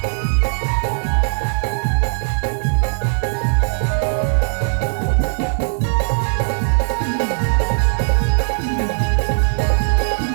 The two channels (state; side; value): silent; left; digital silence